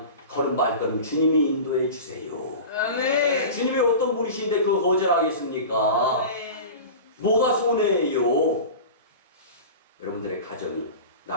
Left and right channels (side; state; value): both; inverted; correlation -0.32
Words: 걸은 발걸음 주님이 인도해 주세요. 아멘. 주님이 어떤 분이신데 그거 거절하겠습니까? 아멘. 뭐가 손해예요? 여러분들의 가정이